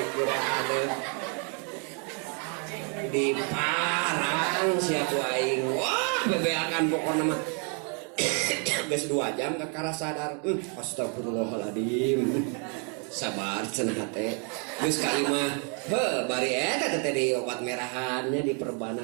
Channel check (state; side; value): quieter; left; 38.7 dB